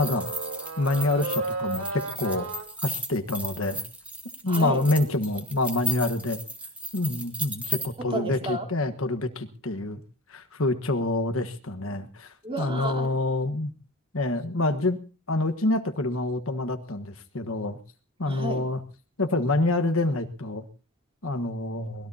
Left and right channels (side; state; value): both; normal; correlation 0.34